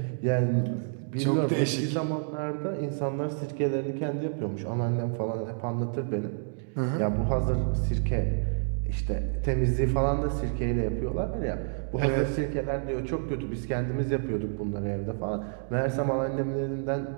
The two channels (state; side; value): silent; left; digital silence